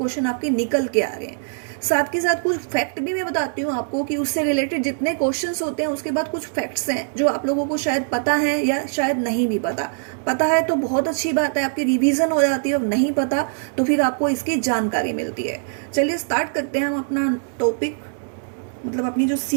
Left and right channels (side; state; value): left; silent; digital silence